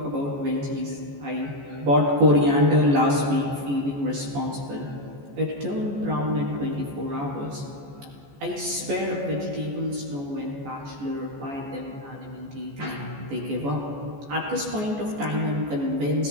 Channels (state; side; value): late; left; 14 ms